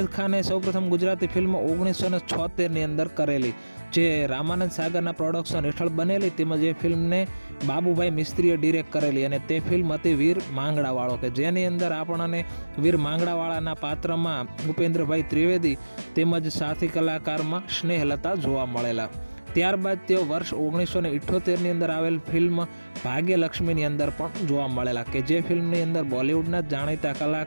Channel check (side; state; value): both; inverted; correlation -1.00